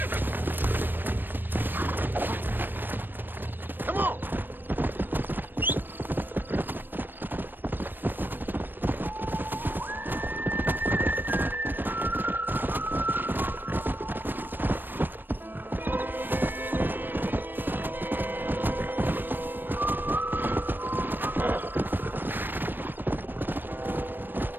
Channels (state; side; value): late; left; 0.094 ms